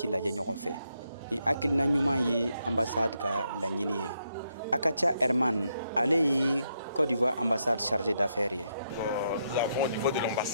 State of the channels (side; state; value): both; inverted; correlation -0.79